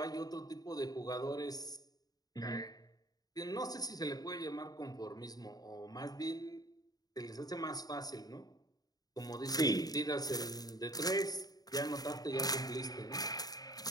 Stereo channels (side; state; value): right; late; 0.18 ms